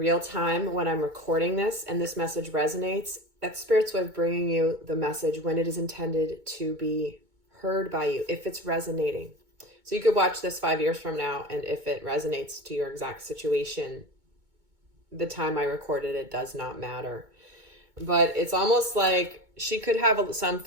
time, when I'm recording this and this message resonates, that's Spirit's way of bringing you the message when it is intended to be heard by you, if it's resonating. So you could watch this 5 years from now, and if it resonates to your exact situation, the time I recorded it does not matter. But it's almost like she could have some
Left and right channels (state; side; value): late; left; 2.2 ms